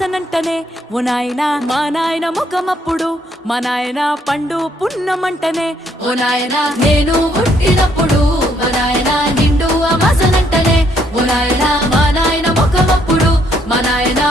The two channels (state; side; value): normal; both; correlation 0.70